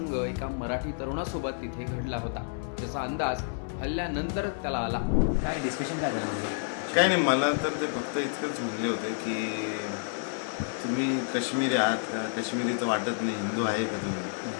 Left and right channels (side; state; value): right; silent; 58 dB below the other